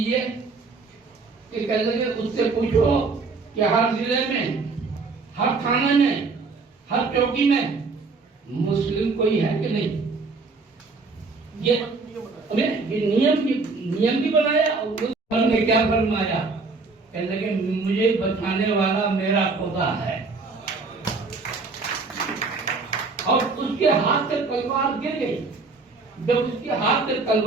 कि कह लगे उससे पूछो कि हर जिले में, हर थाने में, हर चौकी में मुस्लिम कोई है कि नहीं। ये नियम भी बनाया और ने क्या फरमाया, कह लगे मुझे बचाने वाला मेरा खुदा है। और उसके हाथ से तलवार गिर गई। जब उसके हाथ से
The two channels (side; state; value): left; quieter; 4.1 dB